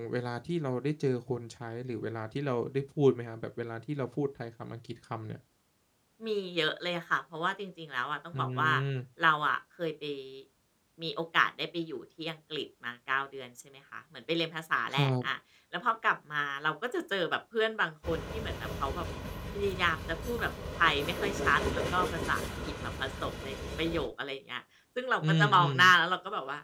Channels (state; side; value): identical; both; correlation 1.00